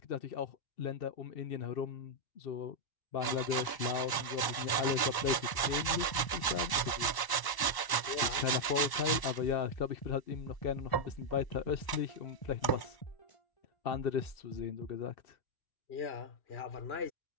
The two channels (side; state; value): right; late; 1.0 ms